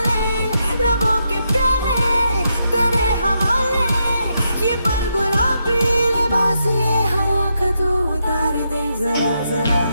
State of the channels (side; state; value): both; inverted; correlation -0.82